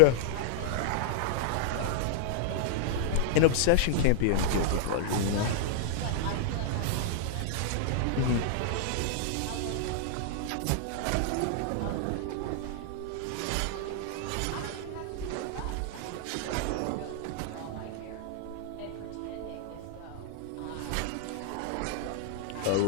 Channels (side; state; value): both; different; correlation -0.01